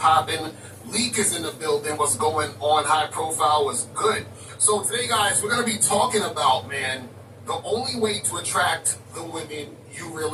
Leak is in the building. What's going on? High profile was good. So today, guys, we're going to be talking about, man, the only way to attract the women you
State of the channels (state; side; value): identical; both; correlation 1.00